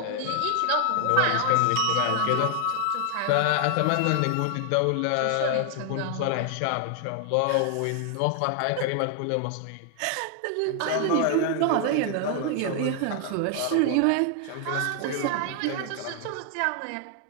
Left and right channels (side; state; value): both; different; correlation 0.00